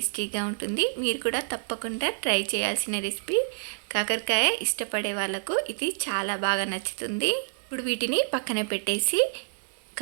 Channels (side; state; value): left; silent; 59 dB below the other